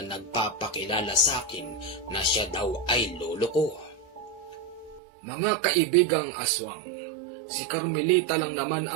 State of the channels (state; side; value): drops out; left; at 5.0 s